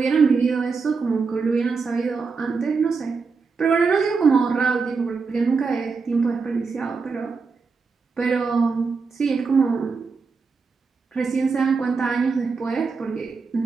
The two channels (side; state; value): left; quieter; 4.8 dB